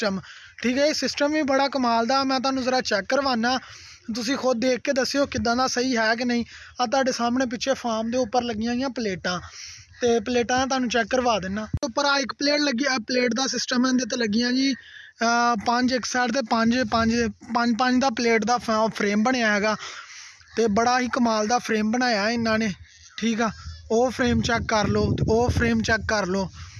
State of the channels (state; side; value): identical; both; correlation 1.00